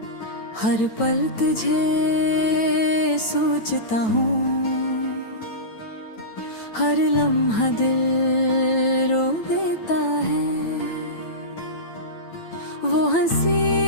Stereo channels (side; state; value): right; late; 9.1 ms